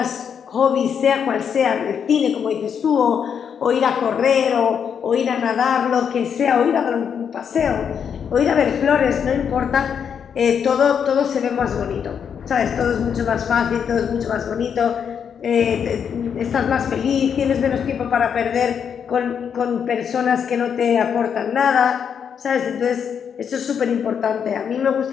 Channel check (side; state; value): right; quieter; 7.5 dB